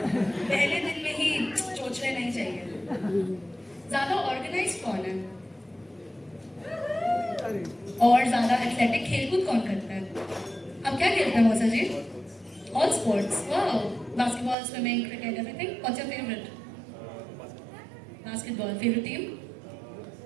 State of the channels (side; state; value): left; drops out; at 14.6 s